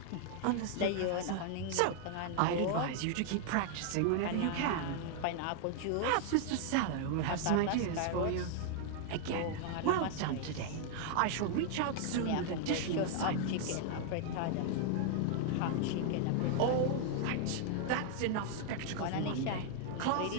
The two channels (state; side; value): different; both; correlation 0.00